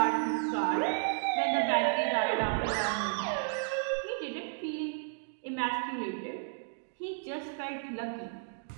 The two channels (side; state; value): left; silent; digital silence